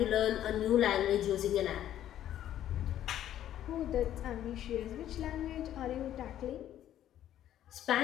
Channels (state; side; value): quieter; right; 11.6 dB